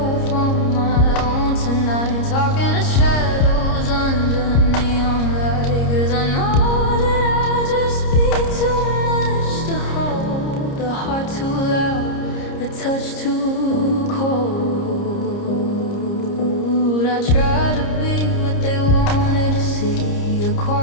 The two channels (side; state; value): right; late; 30 ms